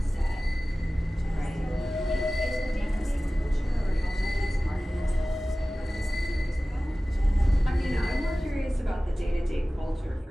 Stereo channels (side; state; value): both; normal; correlation 0.97